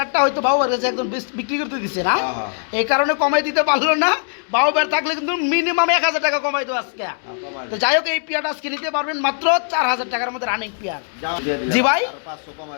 হয়তো বাবুবার কাছে একদম বিক্রি করতে দিচ্ছে না, এই কারণে কমাই দিতে পারলো না। বাবুবার থাকলে কিন্তু মিনিমাম 1000 টাকা কমাই দেবো আজকে। তো যাই হোক এই পেয়ারটা আজকে নিতে পারবেন মাত্র 4000 টাকার মধ্যে রানিং পেয়ার। জি ভাই,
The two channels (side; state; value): right; silent; 65 dB below the other